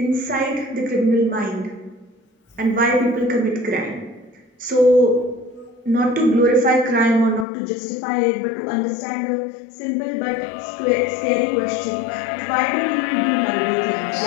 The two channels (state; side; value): drops out; right; at 7.5 s